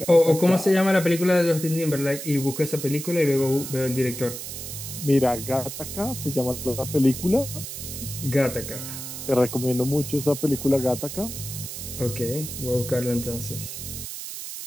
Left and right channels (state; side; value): noise; right; hiss, 8 dB below the sound